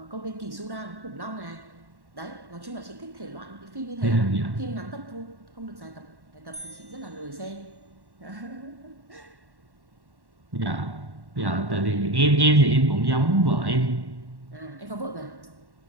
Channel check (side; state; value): left; late; 1.1 ms